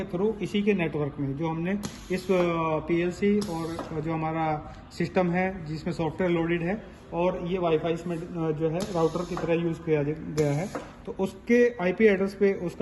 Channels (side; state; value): both; identical; correlation 1.00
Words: थ्रू इसी के नेटवर्क में जो हमने इस पीएलसी और जो हमारा सिस्टम है जिसमें सॉफ्टवेयर लोडेड है और ये वाईफाई इसमें जो है राउटर की तरह यूज किया गया है। तो उसके IP एड्रेस पे